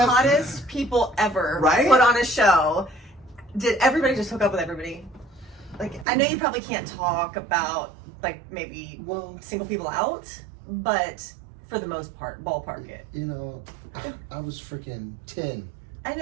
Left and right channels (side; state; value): left; drops out; at 6.1 s